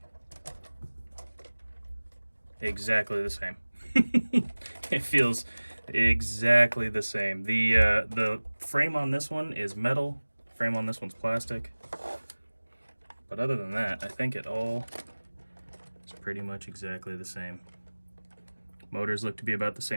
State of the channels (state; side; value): inverted; both; correlation -1.00